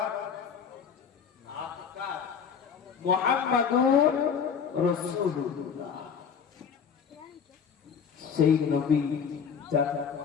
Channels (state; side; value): quieter; right; 6.9 dB